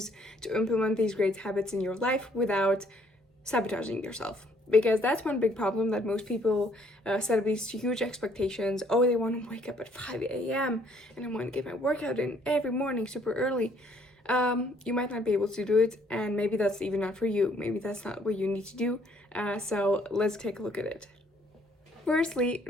to implement these great habits in your life without sabotaging yourself, because that's one big problem that most people set up these huge expectations. Oh, they want to wake up at 5 a.m. and I want to get my workout in every morning super early. You might not be able to do it, and maybe that's even not for you. Maybe that's not what you need to do. So let's take a look at it. Firstly,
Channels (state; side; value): normal; both; correlation 0.64